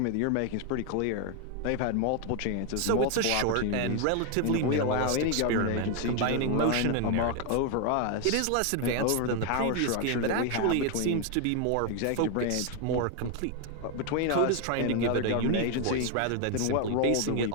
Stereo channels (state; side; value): different; both; correlation 0.01